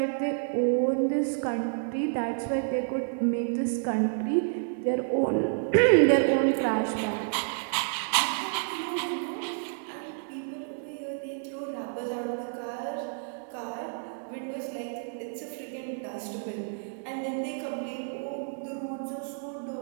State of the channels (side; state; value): left; silent; 58 dB below the other